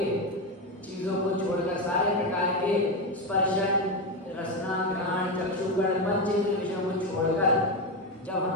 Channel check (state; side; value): normal; both; correlation 0.12